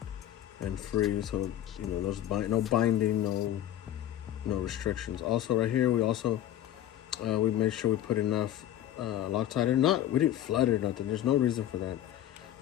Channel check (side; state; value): right; quieter; 12.1 dB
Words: and free, so there's no binding, no restrictions. Also right here, we made sure we put enough Loctite in. We didn't flood it or nothing, there's no reason for that,